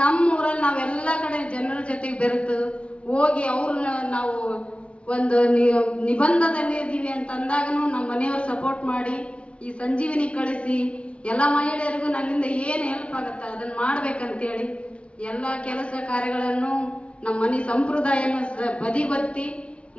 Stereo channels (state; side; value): late; right; 0.060 ms